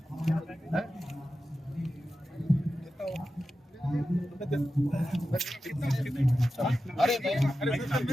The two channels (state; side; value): normal; both; correlation 0.92